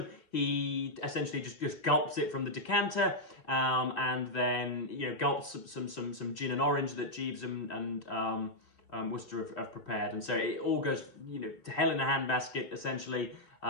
he essentially just gulps it from the decanter, and then, you know, gulps some gin and orange that Jeeves and Wooster have prepared, and so it all goes, you know, to hell in a handbasket essentially.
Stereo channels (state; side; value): late; right; 3.0 ms